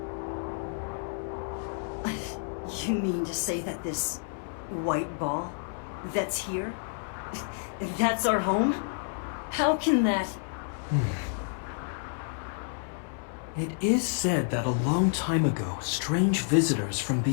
You mean to say that this white ball that's here, that's our home? How can that... It is said that a long time ago, strange visitors from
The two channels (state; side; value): silent; right; 58 dB below the other